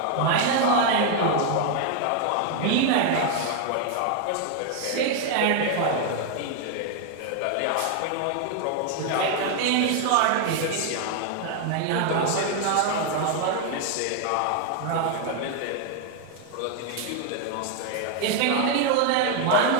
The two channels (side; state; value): both; different; correlation 0.00